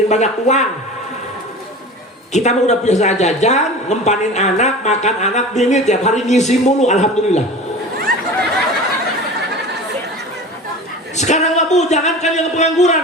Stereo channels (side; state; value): both; normal; correlation 0.36